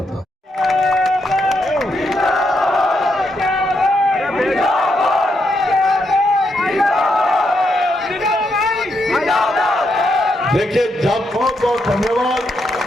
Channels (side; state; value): both; normal; correlation 0.80